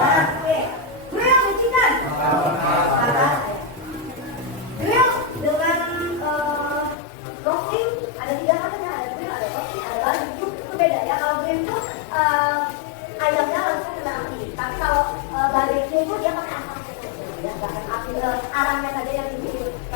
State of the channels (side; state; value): right; drops out; at 7.0 s